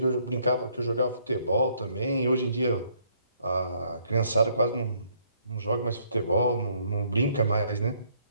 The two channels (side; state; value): both; inverted; correlation -0.67